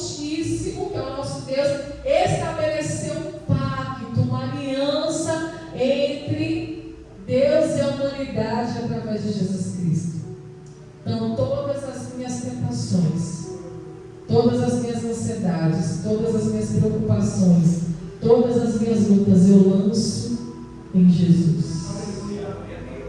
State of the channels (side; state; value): both; identical; correlation 1.00